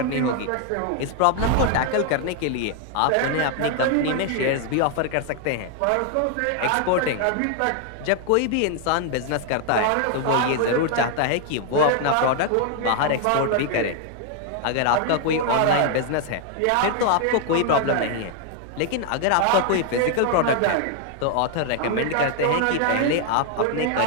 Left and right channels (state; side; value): different; both; correlation 0.00